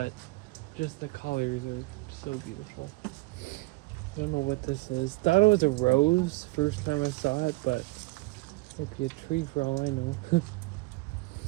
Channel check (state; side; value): quieter; left; 23.5 dB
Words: just the colors are so beautiful. I don't know what this is. Thought it was a rose first time I saw it, but it might be a tree for all I know.